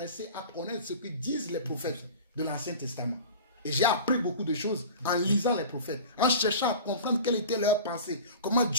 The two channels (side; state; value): both; inverted; correlation -0.36